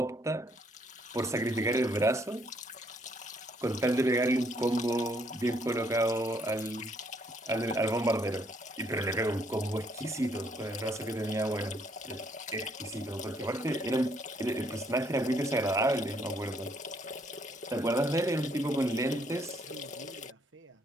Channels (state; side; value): normal; both; correlation 0.69